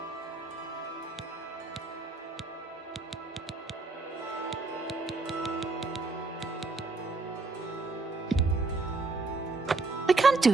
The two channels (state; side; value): quieter; left; 3.7 dB